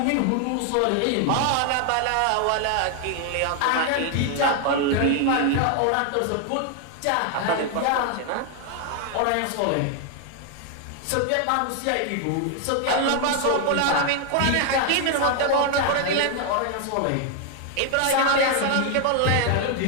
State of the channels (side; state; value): both; different; correlation 0.00